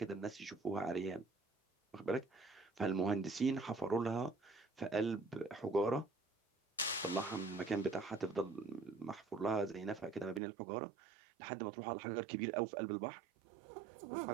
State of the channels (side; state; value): left; drops out; at 10.4 s